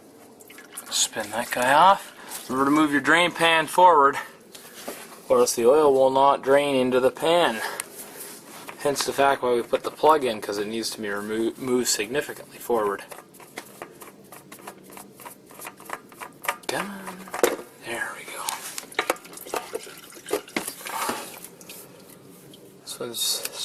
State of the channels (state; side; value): identical; both; correlation 1.00